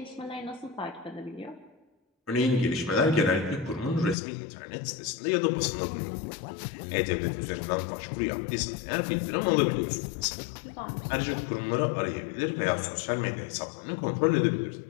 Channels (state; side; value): drops out; right; at 4.2 s